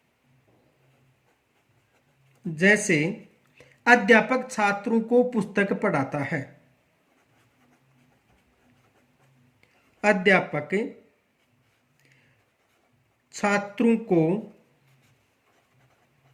जैसे अध्यापक छात्रों को पुस्तक पढ़ाता है, अध्यापक छात्रों को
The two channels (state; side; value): identical; both; correlation 1.00